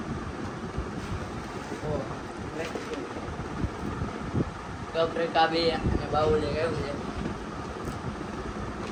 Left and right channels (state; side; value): identical; both; correlation 1.00